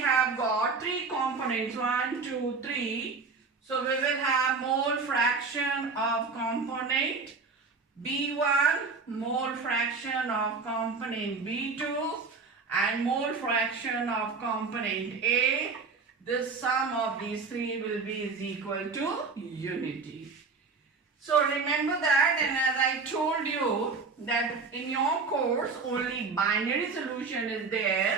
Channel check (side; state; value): left; quieter; 4.5 dB